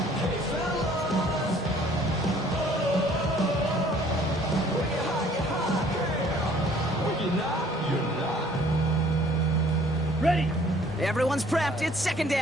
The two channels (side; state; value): both; normal; correlation 0.57